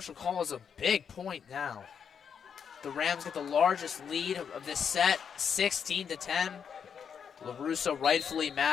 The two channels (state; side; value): quieter; right; 7.2 dB